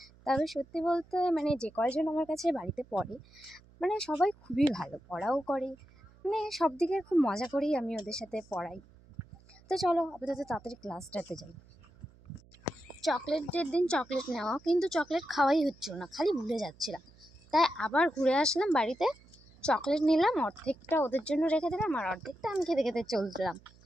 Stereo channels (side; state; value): right; noise; hum, 26 dB below the sound